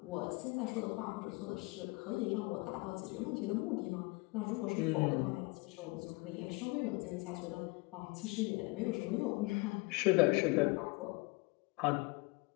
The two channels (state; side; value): quieter; right; 26.5 dB